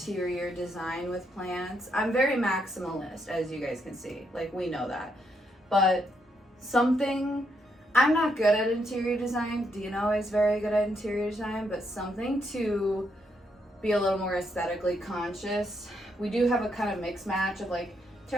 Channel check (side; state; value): both; normal; correlation 0.77